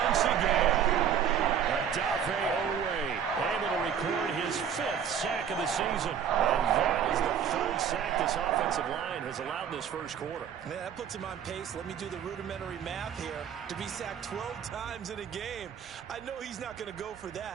once again. Adafe Owe able to record his 5th sack of the season. And that is the 3rd sack this offensive line has allowed this first quarter. Yeah, that puts him on pace. Let me do the rudimentary math here. To be sacked 12 times in a game, I know he's not going to go for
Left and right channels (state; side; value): quieter; left; 8.3 dB